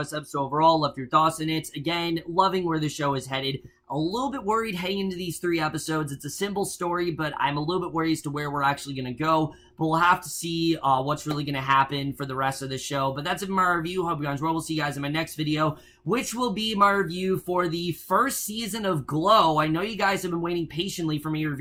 episode overall, left your thoughts in it. Again, loving where the show is headed. A little bit worried heading into these 3 episodes. It's a simple story, but I'm a little bit worried as to where we're actually going to go. But we'll have to see what's really going to happen for the rest of the show. But that's it for my review. Hope you guys well. We'll see you guys in my next video, which will be my review for the first season of Glow. I know you guys have been waiting patiently for me to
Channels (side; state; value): both; identical; correlation 1.00